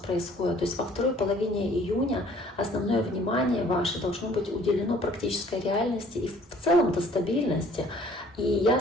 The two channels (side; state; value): both; normal; correlation 0.56